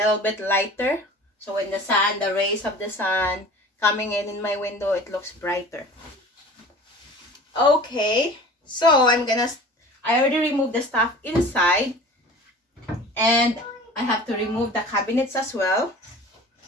bit lighter. So when the rays of the sun coming in my window, it looks brighter. Okay, so I already removed the stuff inside, and I have to remove the cabinets as well,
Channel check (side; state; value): both; normal; correlation 0.41